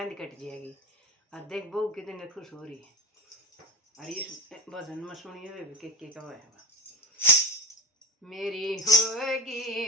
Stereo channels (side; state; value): both; normal; correlation 0.26